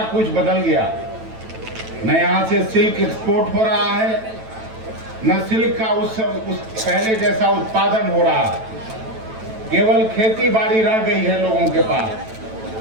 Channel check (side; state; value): left; late; 9.1 ms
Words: कुछ बदल गया। न यहाँ से सिल्क एक्सपोर्ट हो रहा है, न सिल्क का उस पहले जैसा उत्पादन हो रहा है। केवल खेती बाड़ी रह गई है लोगों के पास,